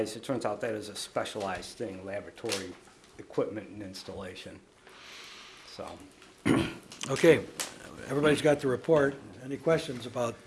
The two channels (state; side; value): identical; both; correlation 1.00